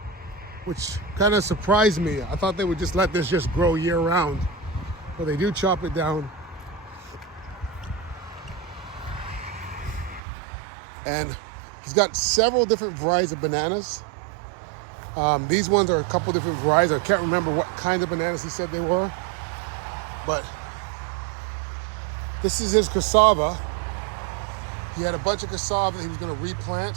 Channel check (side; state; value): left; drops out; at 10.2 s